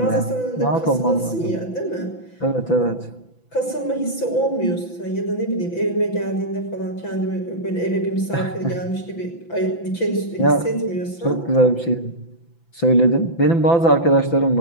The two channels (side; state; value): right; late; 5.9 ms